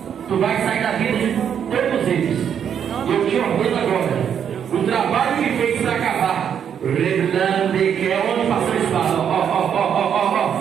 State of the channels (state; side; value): quieter; left; 8.3 dB